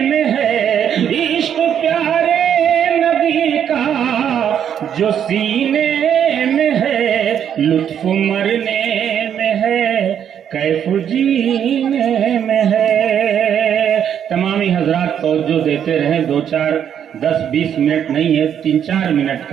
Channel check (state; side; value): quieter; left; 9.0 dB